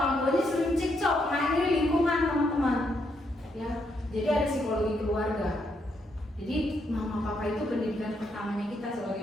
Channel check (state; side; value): normal; both; correlation 0.77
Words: tuanya sering cekcok, nah ini lingkungan teman-teman. Ya, jadi ada psikologi keluarga. Jadi mama papa itu pendidikan pertamanya kita